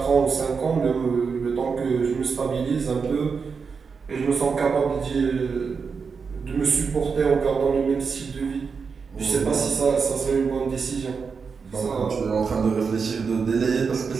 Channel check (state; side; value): quieter; left; 5.4 dB